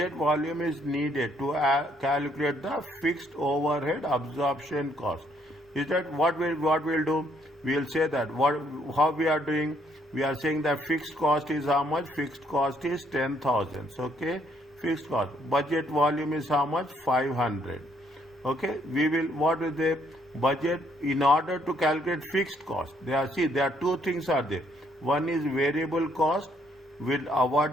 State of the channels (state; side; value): normal; both; correlation 0.69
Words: volume is needed to calculate the fixed overhead absorption cost? Is that what we'll do? We'll say that how we are doing. We are saying that fixed cost is how much? Fixed cost is 10,000. Okay, fixed cost. Budget volume is how much? 500. Okay, we will, what is the budget in order to calculate fixed cost? There are two things are there. One is variable cost, will